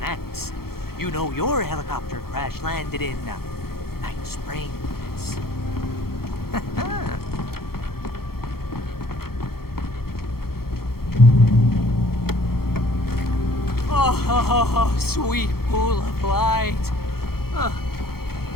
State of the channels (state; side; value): late; right; 0.94 ms